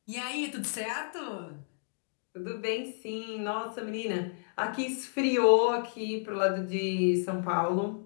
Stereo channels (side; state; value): right; silent; 57 dB below the other